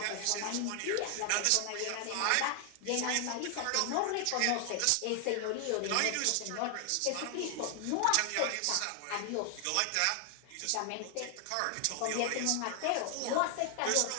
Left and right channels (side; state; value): both; different; correlation 0.00